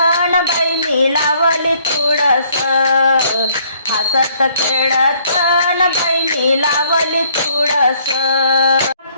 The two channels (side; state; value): both; inverted; correlation -0.64